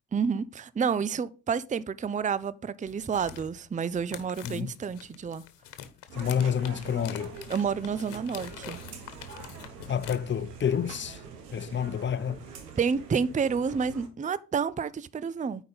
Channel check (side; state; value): both; normal; correlation 0.42